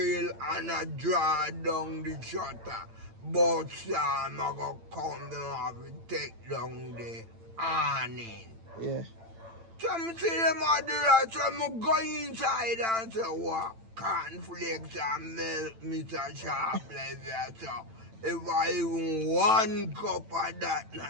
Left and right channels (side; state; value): left; late; 8.9 ms